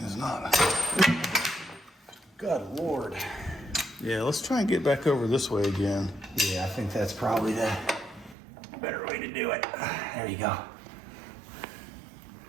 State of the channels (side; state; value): left; drops out; at 8.3 s